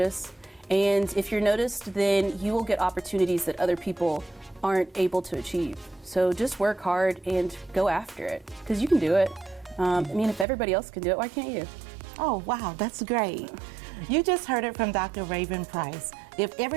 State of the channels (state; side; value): drops out; left; at 10.5 s